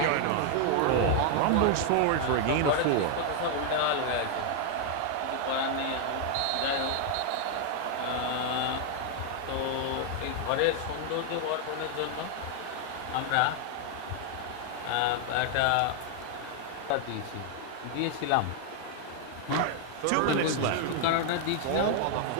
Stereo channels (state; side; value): different; both; correlation 0.00